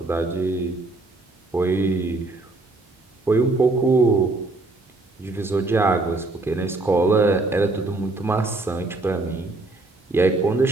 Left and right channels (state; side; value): quieter; left; 3.1 dB